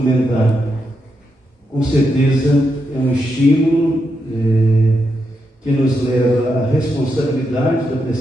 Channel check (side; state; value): both; normal; correlation 0.83